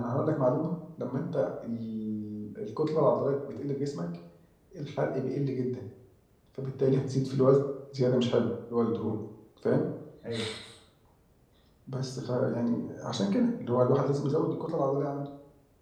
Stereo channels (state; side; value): identical; both; correlation 1.00